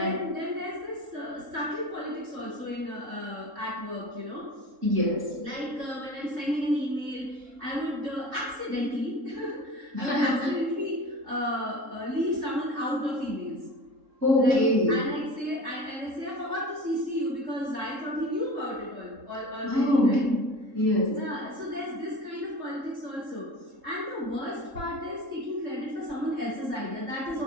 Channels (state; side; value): late; left; 3.7 ms